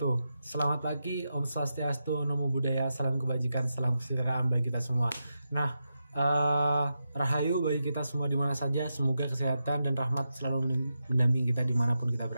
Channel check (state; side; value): inverted; both; correlation -0.87